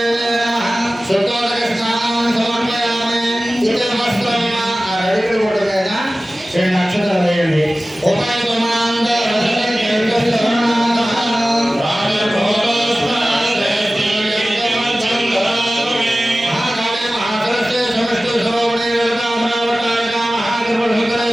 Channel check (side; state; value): both; normal; correlation 0.96